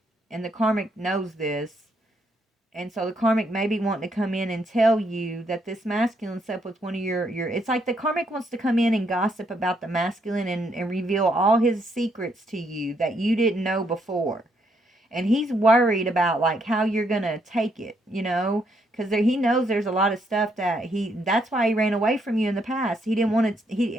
And the karmic knows this. And so the karmic may be wanting to come in and tell you that this masculine slept with one of your it's like the karmic wants to come in and gossip about the masculine and reveal all his secrets to you that you didn't know before. And he's worried about like how you're going to take it, because he knows there's a lot of stuff that's why he ran away from you in the past. He didn't want to,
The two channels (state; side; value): normal; both; correlation 0.74